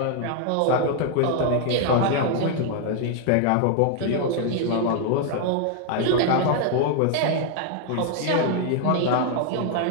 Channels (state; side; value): different; both; correlation 0.00